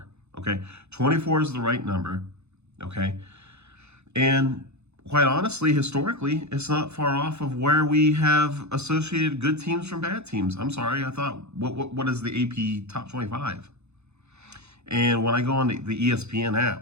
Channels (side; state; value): left; late; 0.81 ms